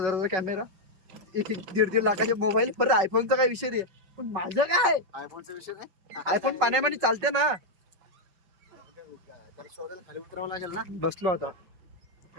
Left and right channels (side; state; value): left; late; 5.4 ms